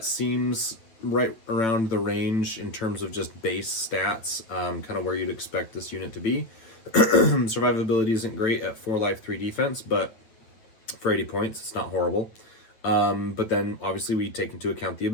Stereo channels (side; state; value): right; late; 9.0 ms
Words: seems right around the range in terms of just base stats, kind of where you'd expect this unit to be. Survivability isn't great at 4 life, 3 defense, but for 80 points, it's not horrible. But then obviously we take into account the